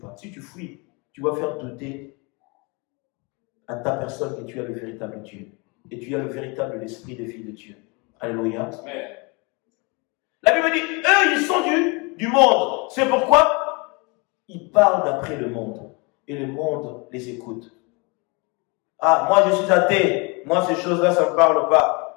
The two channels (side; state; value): right; quieter; 29.7 dB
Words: Si tu fuis, tu vas faire douter à ta personne que tu as le véritable Dieu. Et tu as le véritable esprit de vie de Dieu. Alléluia. La Bible dit, eux, ils sont du monde. C'est pourquoi ils parlent d'après le monde. Et le monde les écoute. Ah, moi je suis athée. Moi, ces choses-là, ça ne me parle